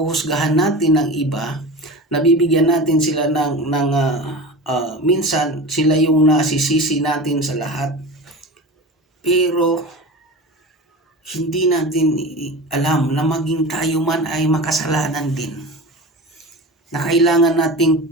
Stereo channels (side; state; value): both; normal; correlation 0.30